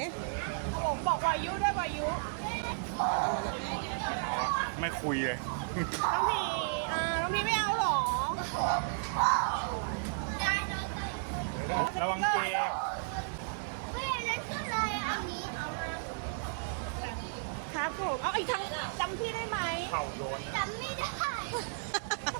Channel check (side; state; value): left; silent; digital silence